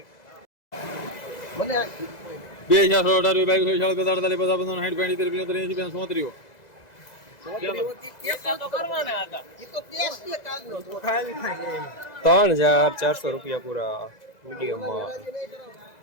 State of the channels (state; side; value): late; right; 2.0 ms